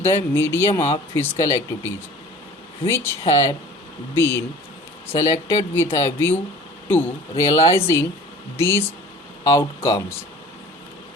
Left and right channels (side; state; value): both; normal; correlation 0.45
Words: medium of physical activities which have been selected with a view to realizing these outcomes.